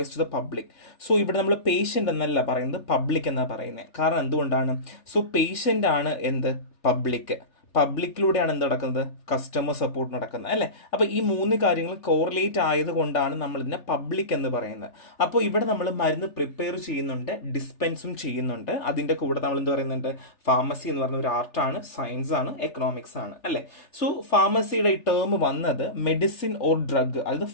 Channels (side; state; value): right; late; 3.4 ms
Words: to the public. So ഇവിടെ നമ്മൾ പേഷ്യന്റ് എന്നല്ല പറയുന്നത്, പബ്ലിക് എന്നാണ് പറയുന്നത്. കാരണം എന്തുകൊണ്ടാണ്? സോ പേഷ്യന്റ് ആണ് എന്ത്? പബ്ലിക്കിലൂടെയാണ് എന്ത് നടക്കുന്നത്? കസ്റ്റമർ സപ്പോർട്ട് നടക്കുന്നത്, അല്ലേ? അപ്പോൾ ഈ മൂന്ന് കാര്യങ്ങൾ കോറിലേറ്റ് ആയതുകൊണ്ടാണ് നമ്മൾ ഇതിനെ പബ്ലിക് എന്ന് പറയുന്നത്. അപ്പോൾ ഇവിടെ നമ്മൾ മരുന്ന് പ്രിപ്പയർ ചെയ്യുന്നുണ്ട്, ഡിസ്പെൻസും ചെയ്യുന്നുണ്ട്. അതിൻ്റെ കൂടെ നമ്മൾ എന്ത് പറയുന്നുണ്ട്? ഫാർമസി എന്ന് പറയുന്ന ഒരു ആർട്ടാണ്, സയൻസ് ആണ്, എക്കണോമിക്സ് ആണ്, അല്ലേ? സോ ഫാർമസിയുടെ ഈ ടേം വന്നത് മെഡിസിൻ ഓർ ഡ്രഗ്, അതായത്